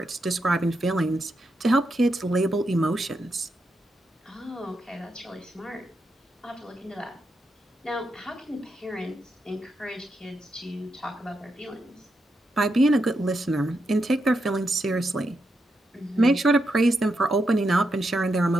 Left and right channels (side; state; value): both; normal; correlation 0.84